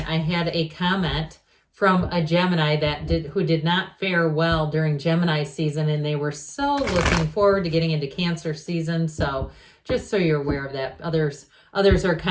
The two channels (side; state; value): both; identical; correlation 1.00